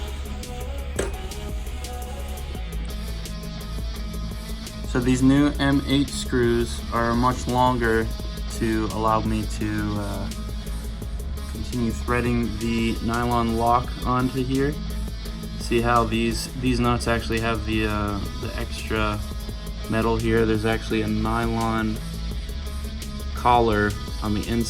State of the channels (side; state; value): both; identical; correlation 1.00